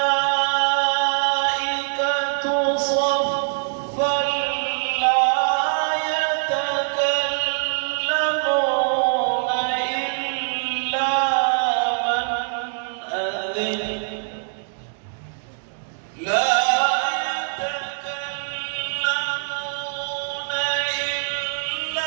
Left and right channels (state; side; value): silent; left; digital silence